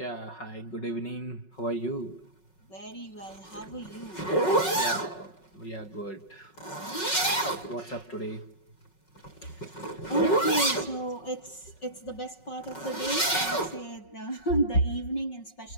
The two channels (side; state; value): right; late; 5.4 ms